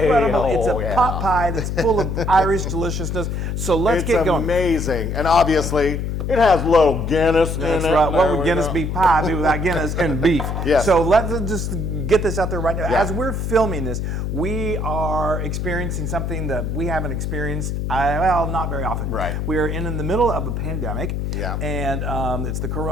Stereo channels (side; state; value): left; noise; hum, 2 dB below the sound